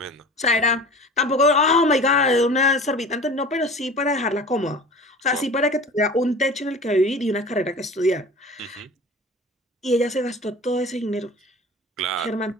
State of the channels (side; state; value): both; normal; correlation 0.38